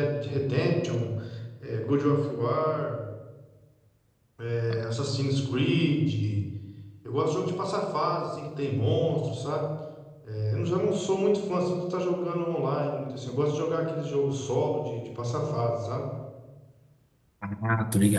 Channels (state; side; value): identical; both; correlation 1.00